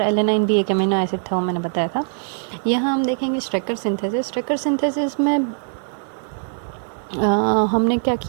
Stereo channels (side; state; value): left; silent; 65 dB below the other